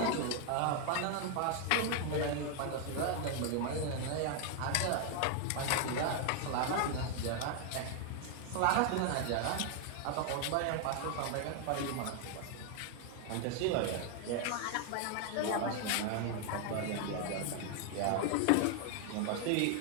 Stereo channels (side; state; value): both; different; correlation 0.00